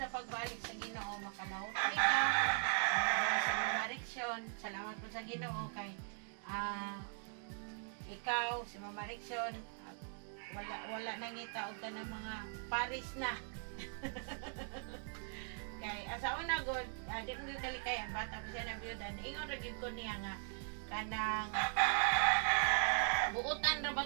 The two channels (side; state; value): left; silent; 51 dB below the other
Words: pagbalik sa Ginoo makalahot ka sa Mariksyon. Salamat po sa Ginoo kay ikaw si Mama Mariksyon wala nangita og kanang mga Paris na. Kay asa una god di mo kalikayan bata mo siya na biyuda ingon ra gid ko niya nga kanang buutan ra ba